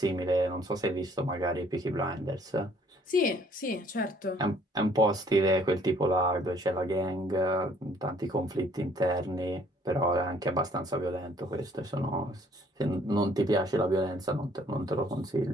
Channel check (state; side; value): normal; both; correlation 0.61